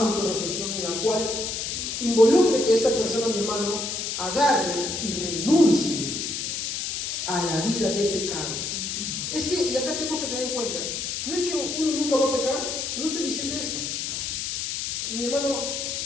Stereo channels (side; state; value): left; noise; hiss, 3 dB below the sound